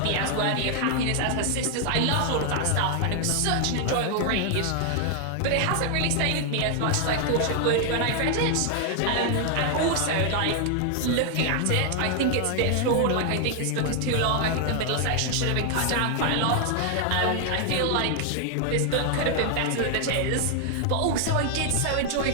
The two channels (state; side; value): different; both; correlation 0.00